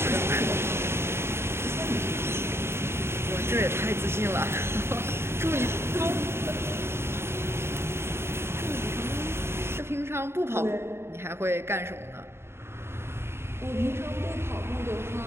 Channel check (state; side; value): late; left; 0.12 ms